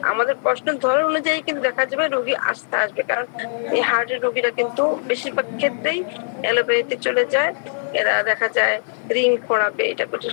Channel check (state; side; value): silent; right; digital silence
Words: আমাদের প্রশ্নের ধরন অনুযায়ী কিন্তু দেখা যাবে রোগী আসতে আসবে, কারণ এই হার্টের রোগীরা কিন্তু বেশিরভাগ ক্ষেত্রেই অ্যালোপ্যাথিতে চলে যায়। এরা দেখা যায় রিং পড়াবে, এটা